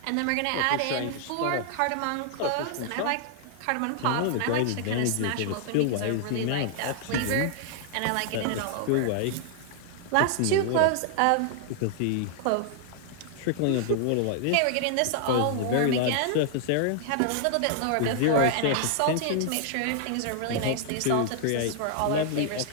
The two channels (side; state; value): both; different; correlation -0.01